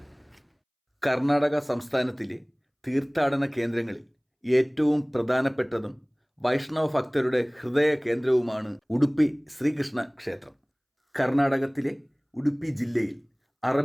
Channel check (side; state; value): both; identical; correlation 1.00